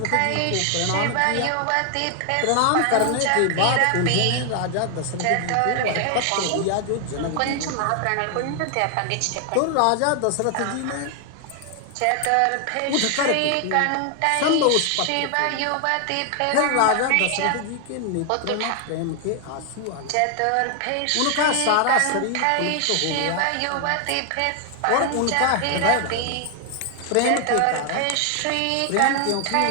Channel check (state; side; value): different; both; correlation 0.00